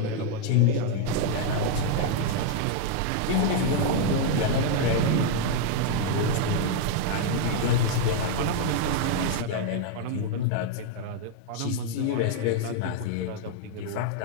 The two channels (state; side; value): different; both; correlation 0.00